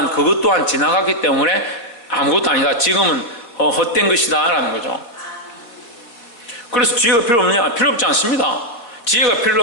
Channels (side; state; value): right; late; 4.2 ms